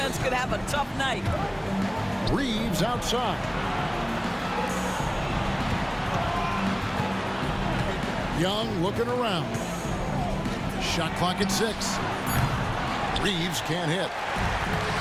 could have a tough night. Reeves outside. Young looking around. Shot clock at 6. Reeves can't hit.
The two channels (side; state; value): both; identical; correlation 1.00